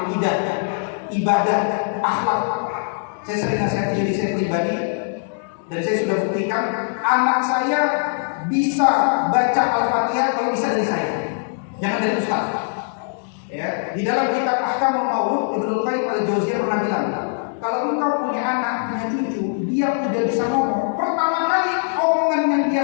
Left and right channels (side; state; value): right; silent; 64 dB below the other